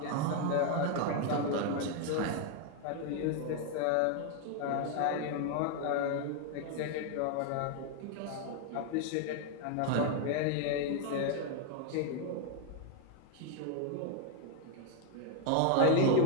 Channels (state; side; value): different; both; correlation 0.00